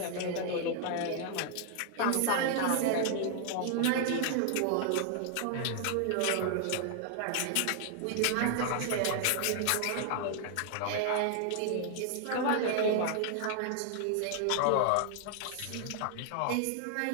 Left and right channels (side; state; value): both; different; correlation 0.00